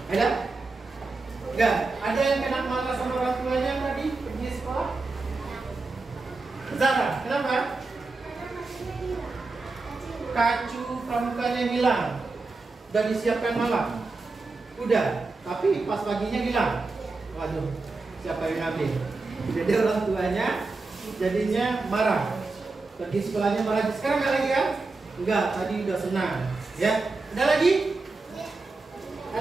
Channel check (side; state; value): left; quieter; 3.7 dB